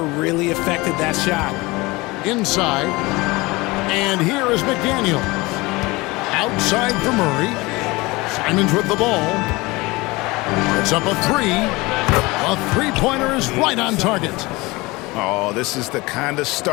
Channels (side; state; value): right; quieter; 22.7 dB